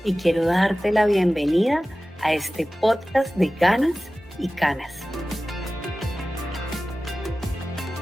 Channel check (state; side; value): normal; both; correlation 0.96